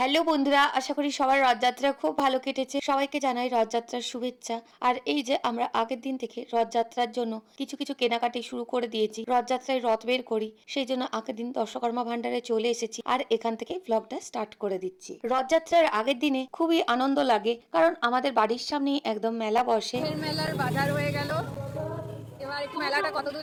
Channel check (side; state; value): both; identical; correlation 1.00